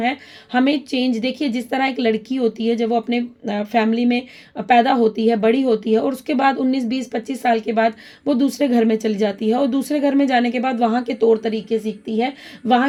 हमें चेंज, देखिए जिस तरह एक लड़की होती है जब वो अपने फैमिली में पैदा होती है, बड़ी होती है, और उसके बाद 19, 20, 25 साल के बाद वो दूसरे घर में चली चली जाती है और दूसरे घर में जाने के बाद वहाँ के तौर तरीके सीखती है,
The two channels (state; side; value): identical; both; correlation 1.00